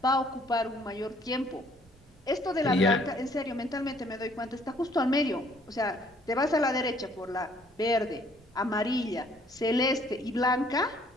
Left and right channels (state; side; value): noise; right; rumble, 27 dB below the sound